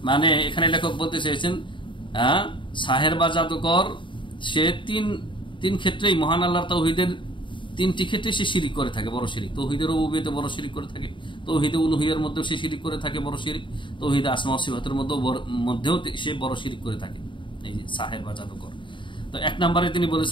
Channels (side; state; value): right; late; 0.24 ms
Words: মানে এখানে লেখক বলতে চেয়েছেন সাহের বা জাদুকর সে তিন ক্ষেত্রেই মহান আল্লাহর তাওহীদের তিনটি ক্ষেত্রে সে শিরিক করে থাকে, বড় শিরিক। তাওহীদের রুবুবিয়্যাতে বড় শিরিক করে থাকে, তাওহীদে উলুহিয়ার মধ্যেও সে শিরিক করে থাকে বড় শিরিক, তাওহীদে আসমা ওয়া সিফাতের মধ্যেও সে বড় শিরিক করে থাকে, এই যে সাহের বা জাদুকর। তো এক নম্বরে তিনি